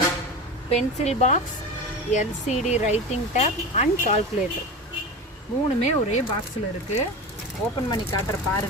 pencil box, LCD writing tab and calculator. 3மே ஒரே பாக்ஸில் இருக்குது. ஓப்பன் பண்ணி காட்டுற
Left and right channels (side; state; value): both; normal; correlation 0.28